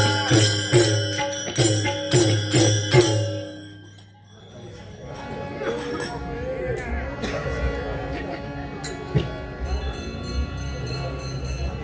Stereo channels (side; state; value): both; identical; correlation 1.00